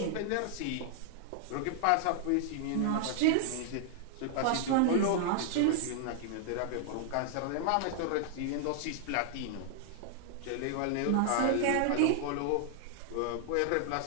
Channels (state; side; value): different; both; correlation -0.01